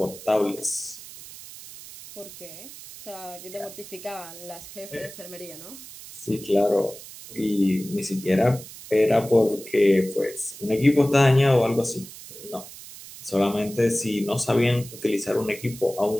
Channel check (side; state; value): right; noise; hiss, 15 dB below the sound